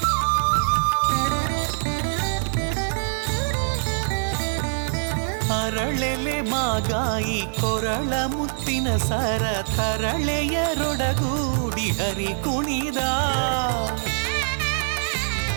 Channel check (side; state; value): left; silent; digital silence